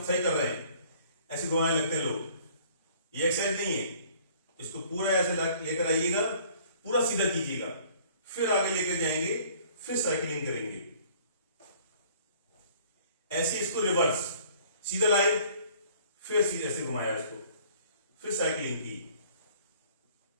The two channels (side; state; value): both; inverted; correlation -0.55